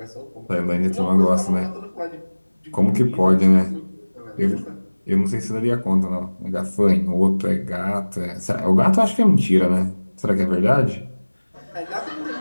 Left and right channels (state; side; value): inverted; both; correlation -1.00